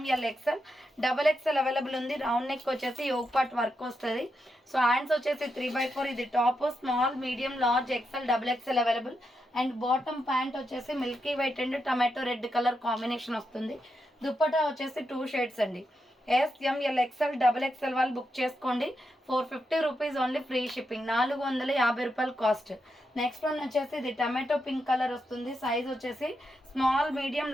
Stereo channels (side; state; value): both; normal; correlation 0.84